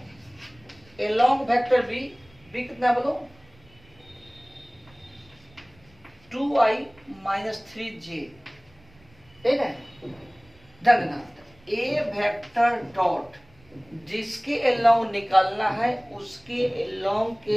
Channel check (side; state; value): right; noise; rumble, 29 dB below the sound